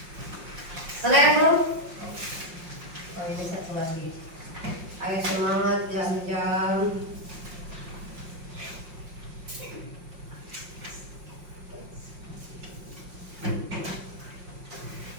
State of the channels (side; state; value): left; late; 5.6 ms